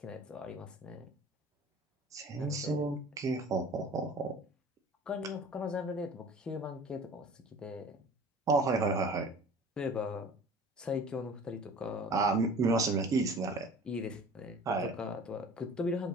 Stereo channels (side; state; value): both; normal; correlation 0.43